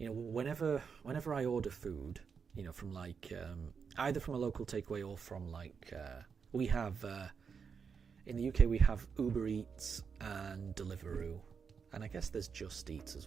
I order food, from like either from a local takeaway or from like we have in the UK we have Uber Eats and Deliveroo, and I guess there's Just Eat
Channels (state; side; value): quieter; left; 6.1 dB